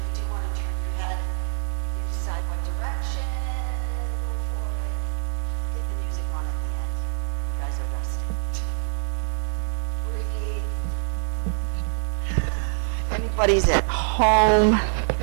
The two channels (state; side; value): silent; left; 62 dB below the other